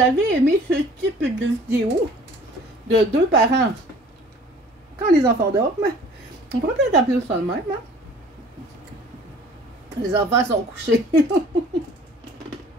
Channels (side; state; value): both; normal; correlation 0.50